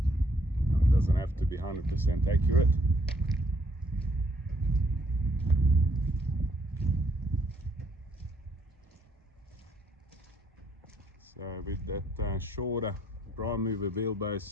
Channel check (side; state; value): both; normal; correlation 0.68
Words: It doesn't have to be 100% accurate. So with that shorter prime mover